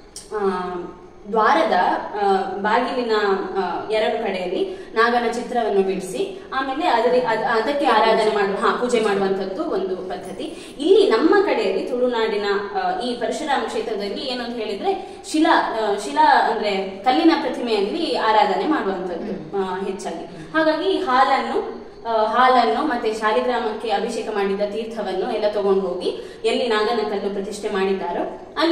ದ್ವಾರದ ಬಾಗಿಲಿನ ಎರಡು ಕಡೆಯಲ್ಲಿ ನಾಗನ ಚಿತ್ರವನ್ನು ಬಿಡಿಸಿ ಆಮೇಲೆ ಅದಕ್ಕೆ ಆರಾಧನೆ ಪೂಜೆ ಮಾಡುವಂತದ್ದು ಒಂದು ಪದ್ಧತಿ. ಇಲ್ಲಿ ನಮ್ಮ ಕಡೆಯಲ್ಲಿ ತುಳುನಾಡಿನ ಈ ಪರಶುರಾಮ ಕ್ಷೇತ್ರದಲ್ಲಿ ಏನಂತ ಹೇಳಿದ್ರೆ, ಶಿಲಾ ಅಂದ್ರೆ ಕಲ್ಲಿನ ಪ್ರತಿಮೆಯಲ್ಲಿ ಆರಾಧನೆ ಮಾಡುವಂತದ್ದು ಹೆಚ್ಚಾಗಿ. ಹಾಗಾಗಿ ಹಾಲನ್ನು ಮತ್ತೆ ಶಾಲಿಗ್ರಾಮಕ್ಕೆ ಅಭಿಷೇಕ ಮಾಡಿದ ತೀರ್ಥವನ್ನು ಎಲ್ಲ ತಗೊಂಡು ಹೋಗಿ ಎಲ್ಲಿ ನಾಗನ ಕಲ್ಲು ಪ್ರತಿಷ್ಠೆ ಮಾಡಿದ್ದಾರೋ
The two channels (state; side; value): identical; both; correlation 1.00